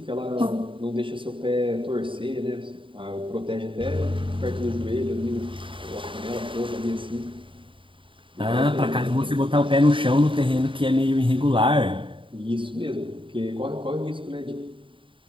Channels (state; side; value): late; left; 0.25 ms